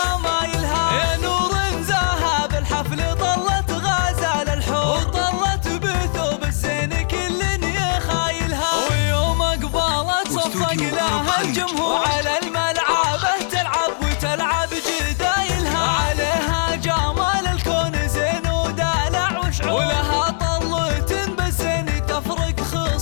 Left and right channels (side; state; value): right; silent; 66 dB below the other